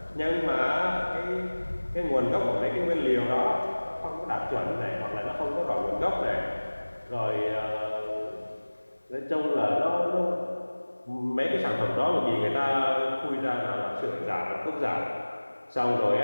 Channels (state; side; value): inverted; both; correlation -1.00